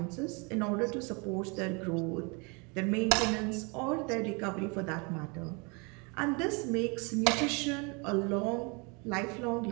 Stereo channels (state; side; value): quieter; left; 31.2 dB